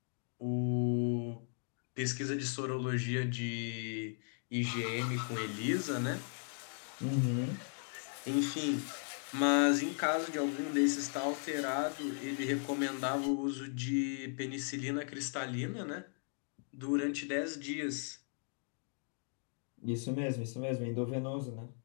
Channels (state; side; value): silent; right; 53 dB below the other